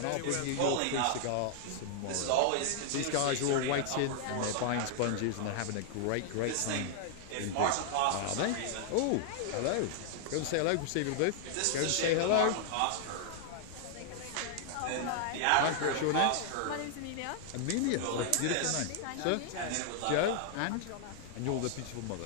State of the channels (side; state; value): both; different; correlation -0.01